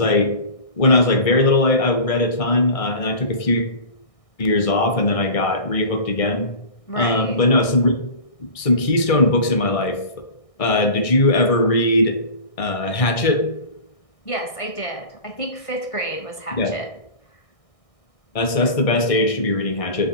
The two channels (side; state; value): right; late; 1.6 ms